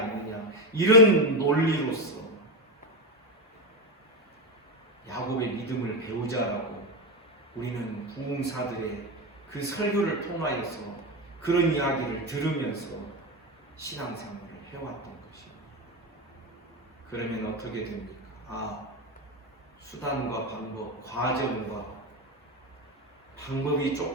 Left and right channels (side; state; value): both; normal; correlation 0.13